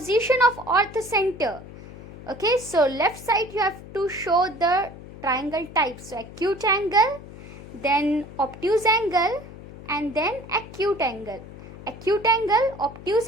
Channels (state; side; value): noise; left; hum, 15 dB below the sound